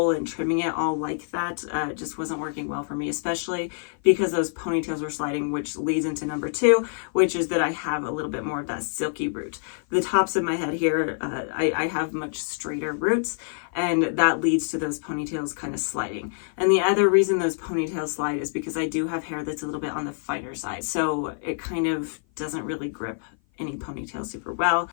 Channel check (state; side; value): silent; right; 55 dB below the other